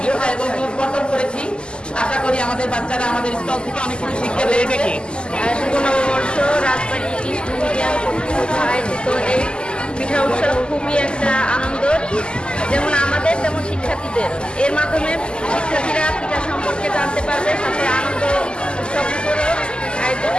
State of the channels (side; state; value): right; late; 0.049 ms